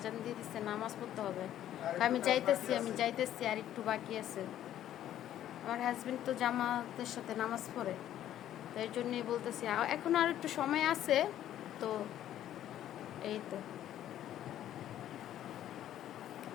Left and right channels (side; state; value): right; quieter; 11.8 dB